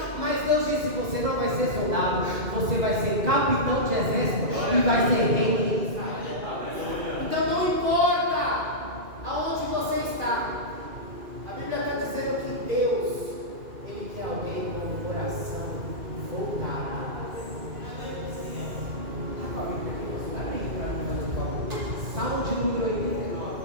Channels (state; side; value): late; left; 2.5 ms